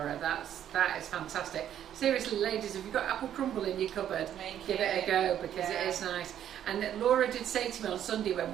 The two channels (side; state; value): left; quieter; 10.4 dB